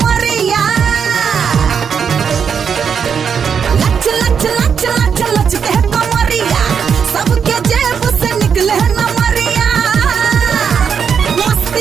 लच लच लच लच लच के कमरिया सबके जेब से निकले नमरिया।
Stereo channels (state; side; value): quieter; left; 6.9 dB